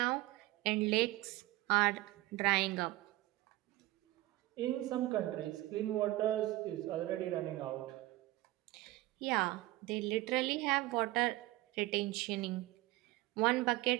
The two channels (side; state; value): left; quieter; 18.4 dB